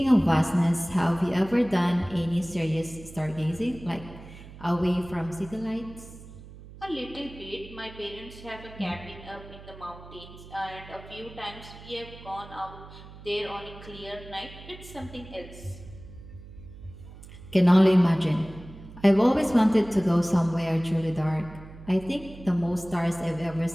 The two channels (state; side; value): noise; right; hum, 17 dB below the sound